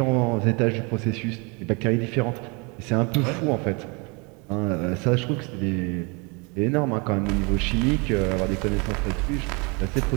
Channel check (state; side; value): quieter; left; 30.4 dB